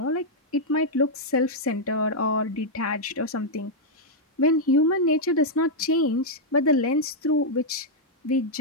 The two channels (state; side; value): normal; both; correlation -0.05